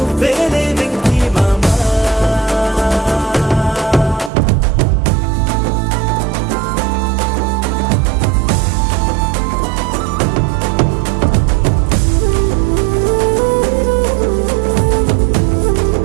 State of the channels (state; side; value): drops out; left; at 4.3 s